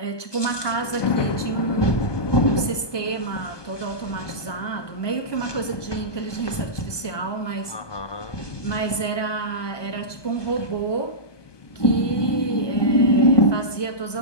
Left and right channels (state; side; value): late; right; 1.2 ms